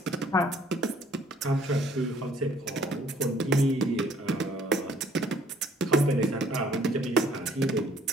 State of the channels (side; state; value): both; normal; correlation 0.59